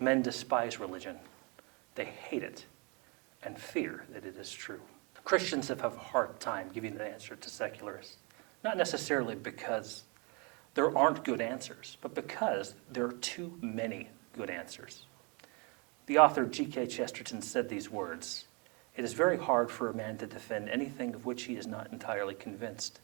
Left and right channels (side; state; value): left; quieter; 31.8 dB